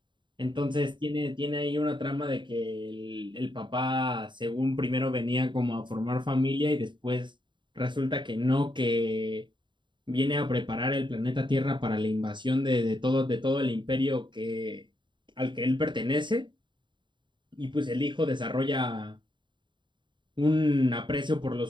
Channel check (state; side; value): late; left; 0.23 ms